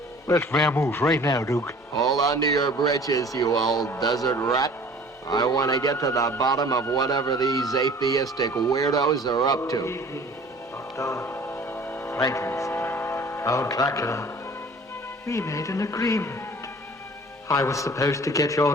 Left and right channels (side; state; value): both; normal; correlation 0.47